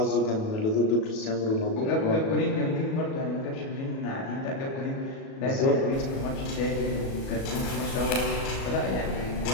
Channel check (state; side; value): late; right; 37 ms